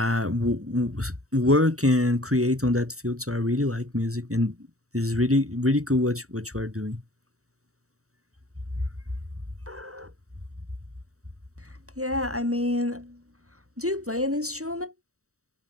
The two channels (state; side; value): late; left; 0.65 ms